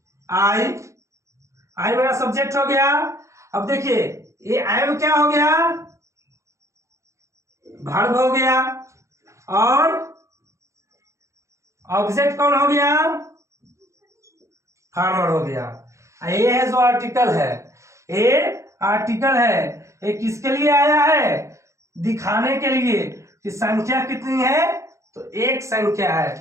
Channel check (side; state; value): left; late; 0.14 ms